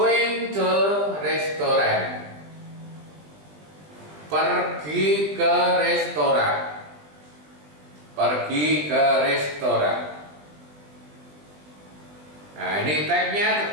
to restaurant. Pergi ke restoran. Pergi ke restoran. Nah, ini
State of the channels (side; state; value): left; late; 20 ms